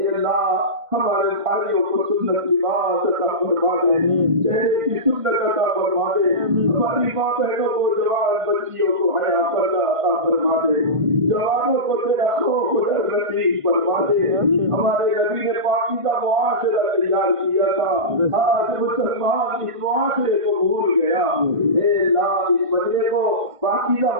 اللہ ہمارے بھائیوں کو سنت لباس عطا فرما دے چہرے کی سنت عطا فرما دے ہماری ماں بہنوں کو جوان بچیوں کو حیا پردہ عطا فرما دے جوانوں کو تیرا خوف ڈر نصیب فرما دے ہمارے نبی نے پاکیزہ معاشرہ تیار کیا تھا آج مسلمان اس معاشرے کو بھول گیا اے اللہ اس مجلے کو پاکیزہ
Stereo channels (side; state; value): left; late; 1.5 ms